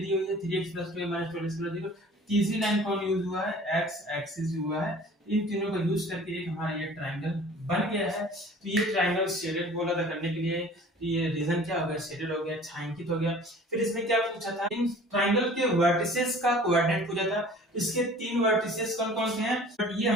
दी हुई है 3x plus 2y minus 12 equal to 0, तीसरी लाइन कौन यूज हुआ है, x एक्सिस हुआ है। इन तीनों का यूज करके एक हमारा ये ट्राइंगल बन गया है। तो ये ट्राइंगल शेडेड बोला था करने के लिए, ये रीजन क्या हो गया, शेडेड हो गया, छायांकित हो गया। फिर इसमें क्या पूछा था, इन ट्राइंगल के वर्टिसेस का कोऑर्डिनेट पूछा था। इसके 3 वर्टिसेस कौन कौन से हैं, बट ये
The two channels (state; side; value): normal; both; correlation 0.47